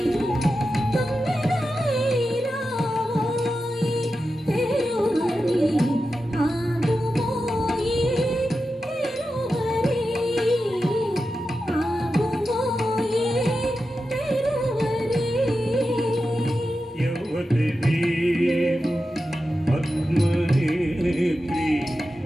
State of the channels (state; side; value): normal; both; correlation 0.91